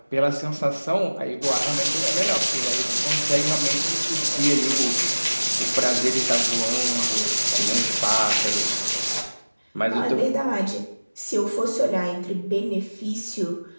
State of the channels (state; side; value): inverted; both; correlation -1.00